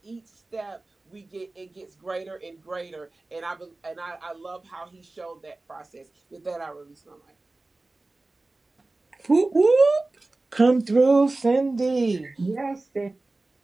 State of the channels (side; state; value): left; quieter; 3.1 dB